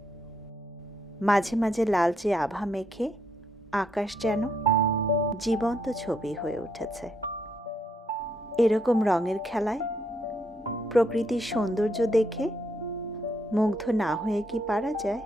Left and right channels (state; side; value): normal; both; correlation 0.74